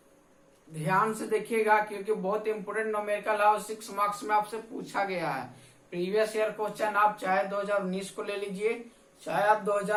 ध्यान से देखिएगा क्योंकि बहुत इंपोर्टेंट न्यूमेरिकल है और 6 मार्क्स में आपसे पूछा गया है। प्रीवियस ईयर क्वेश्चन आप चाहे 2019 को ले लीजिए, चाहे आप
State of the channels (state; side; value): identical; both; correlation 1.00